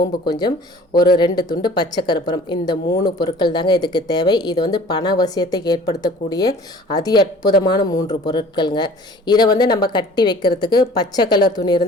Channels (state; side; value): normal; both; correlation 0.48